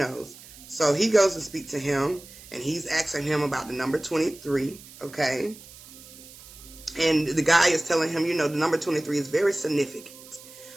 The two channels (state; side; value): noise; right; hiss, 19 dB below the sound